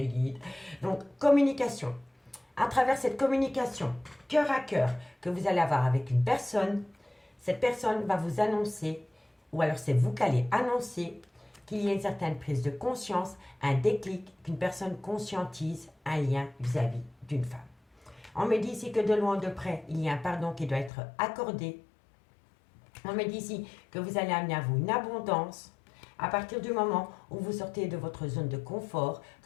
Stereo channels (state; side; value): drops out; right; at 20.9 s